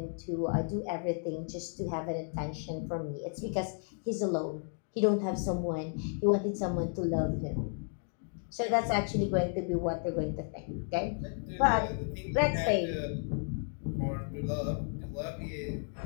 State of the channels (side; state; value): right; silent; 56 dB below the other